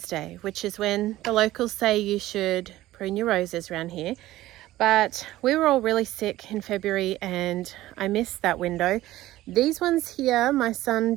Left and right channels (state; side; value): quieter; left; 15.9 dB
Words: Day, which is when the locals say you should prune your roses around here. But we were all really sick in February and I missed that window. These ones here, my son